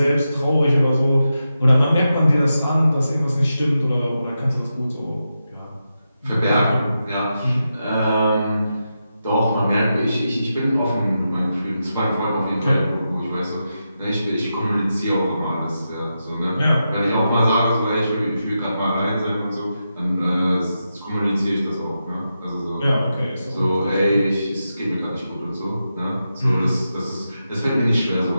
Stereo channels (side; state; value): both; inverted; correlation -0.88